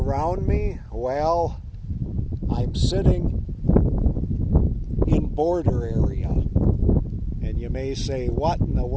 me? Well, I'm sitting in border area. And you may say, what in the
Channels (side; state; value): both; identical; correlation 1.00